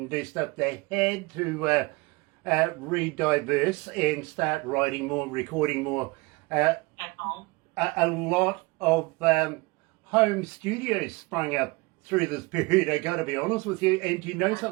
do stuff. They had to re-diverse and start writing more, recording more. At home. A lot of home studios sprung up through this period, I got to be honest with you. And you know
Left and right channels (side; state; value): left; quieter; 25.0 dB